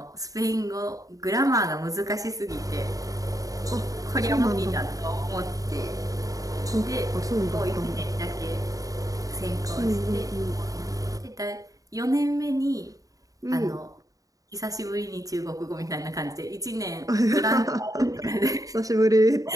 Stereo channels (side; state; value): left; late; 0.17 ms